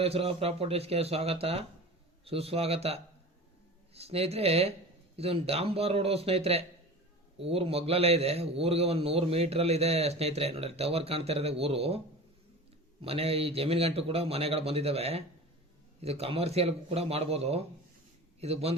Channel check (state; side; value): normal; both; correlation 0.35